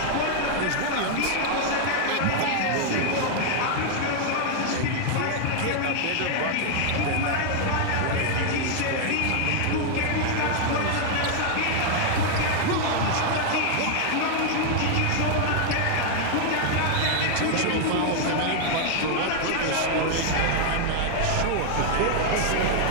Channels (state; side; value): different; both; correlation 0.00